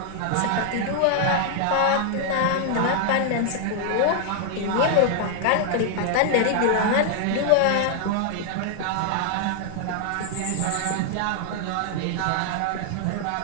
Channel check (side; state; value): both; different; correlation 0.00